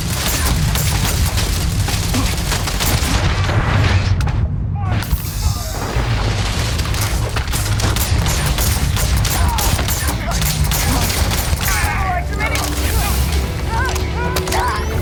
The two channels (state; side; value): identical; both; correlation 1.00